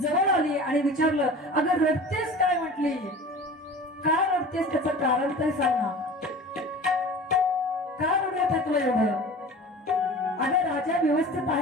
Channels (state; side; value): normal; both; correlation 0.39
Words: आली आणि विचारलं, अगं रडतेस काय? म्हटली काय रडतेस, त्याचं कारण तरी सांग ना, काय रडत आहे तुला एवढं? अगं राजा व्यवस्थित